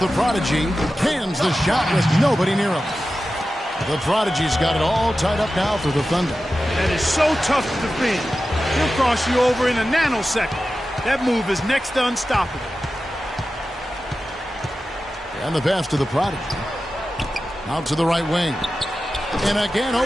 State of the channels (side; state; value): both; normal; correlation 0.93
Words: prodigy. Cans the shot with nobody near him. The prodigy's got it all tied up now for the Thunder. That is so tough to defend. He'll cross you over in a nanosecond. That move is next to unstoppable. And the pass to the prodigy. Out to the right wing. And again,